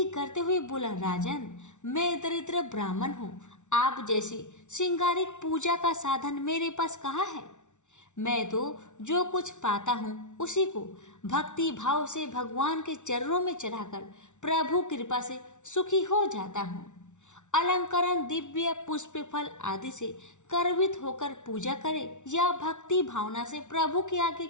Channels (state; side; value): late; right; 0.84 ms